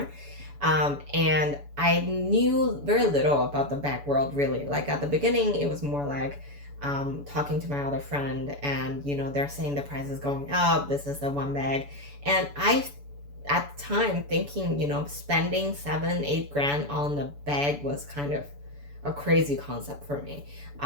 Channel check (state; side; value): late; left; 7.0 ms